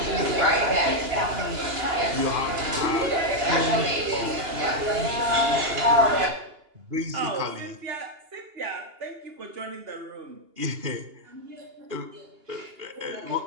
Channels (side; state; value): left; late; 2.8 ms